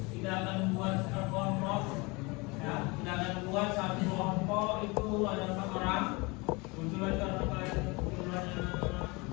kita akan buat kelompok. Ya, kita akan buat satu kelompok itu ada 4 orang. Kebetulan karena kalian jumlahnya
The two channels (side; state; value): right; quieter; 26.3 dB